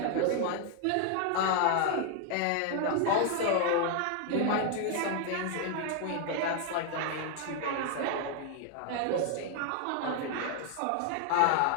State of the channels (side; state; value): both; different; correlation 0.00